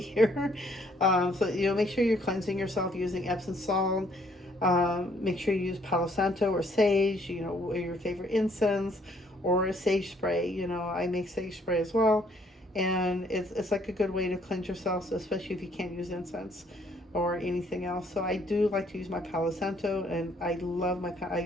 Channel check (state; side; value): normal; both; correlation 0.65